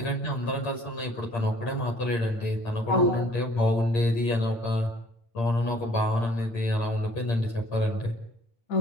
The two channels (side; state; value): right; late; 8.7 ms